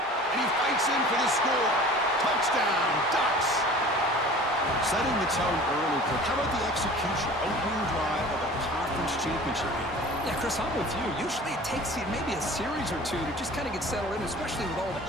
And he fights in for the score. Touchdown, Ducks. Setting the tone early, Kirk. How about the execution? Opening drive of a conference championship game. Yeah, Chris, I'm with you. Usually it takes maybe a series or two to just kind of get settled in, especially with all the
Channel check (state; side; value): normal; both; correlation 0.43